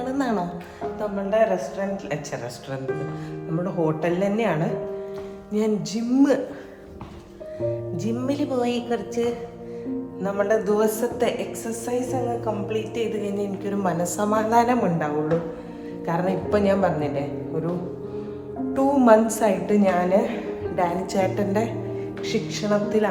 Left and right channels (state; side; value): identical; both; correlation 1.00